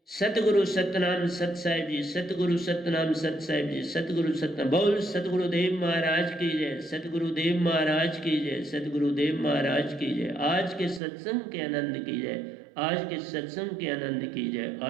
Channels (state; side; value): drops out; left; at 11.0 s